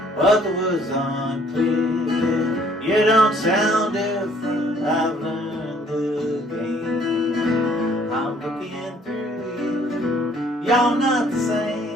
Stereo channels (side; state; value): both; normal; correlation 0.61